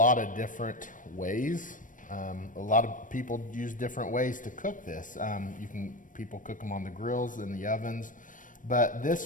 of different ways. A lot of people use different ways to cook this. People cook them on the grills, in the ovens. But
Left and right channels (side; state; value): right; late; 0.38 ms